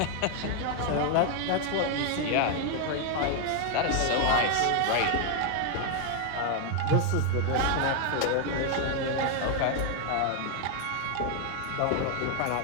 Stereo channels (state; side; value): different; both; correlation 0.00